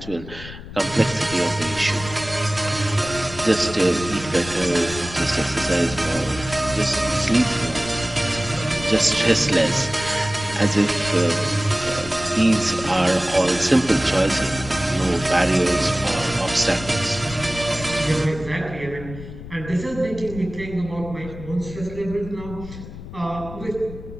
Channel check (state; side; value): noise; left; rumble, 13 dB below the sound